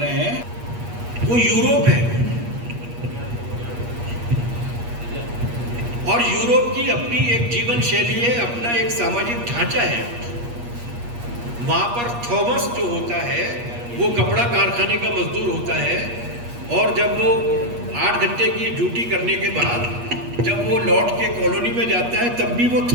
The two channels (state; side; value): late; left; 8.4 ms